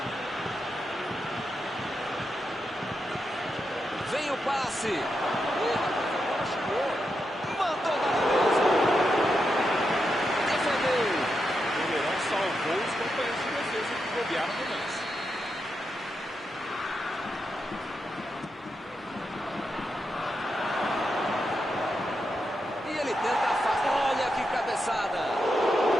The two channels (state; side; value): normal; both; correlation 0.85